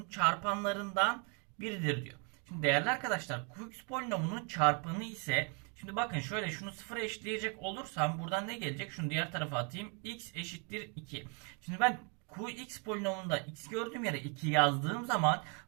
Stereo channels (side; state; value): left; quieter; 36.7 dB